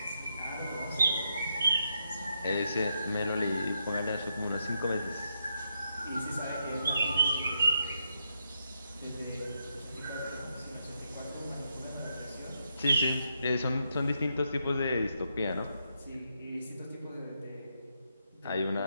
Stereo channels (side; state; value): both; inverted; correlation -0.81